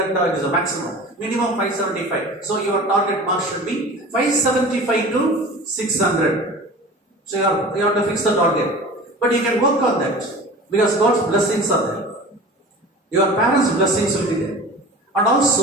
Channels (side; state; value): both; normal; correlation 0.38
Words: it is a maximum. Minimum 575. So, your target mark should be 575 to 600. So you have to fix the target. But you can work on that because God's blessings are there. Your parents' blessings will be there. And